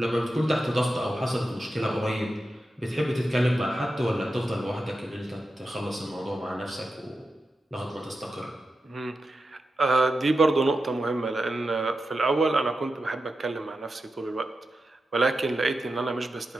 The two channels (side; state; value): both; normal; correlation 0.90